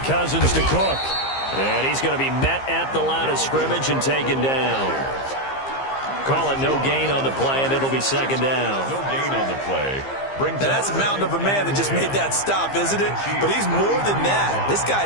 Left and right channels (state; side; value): late; right; 15 ms